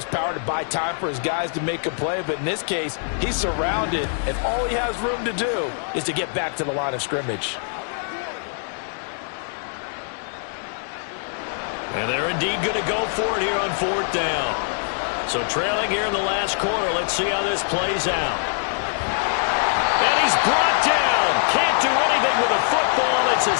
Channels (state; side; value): silent; right; digital silence